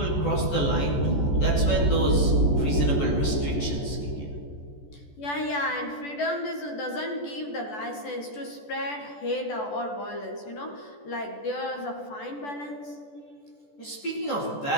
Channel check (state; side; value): late; right; 14 ms